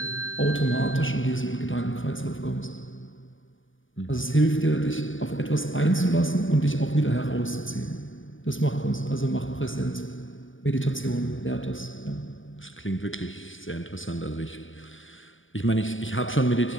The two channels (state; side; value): late; right; 0.57 ms